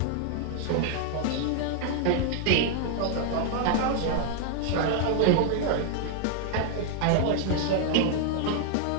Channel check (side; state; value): both; different; correlation 0.00